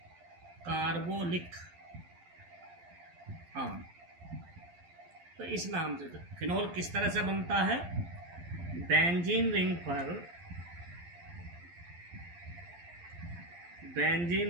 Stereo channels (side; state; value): left; late; 12 ms